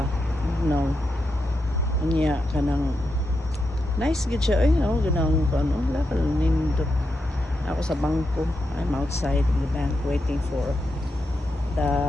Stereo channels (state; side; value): normal; both; correlation 0.86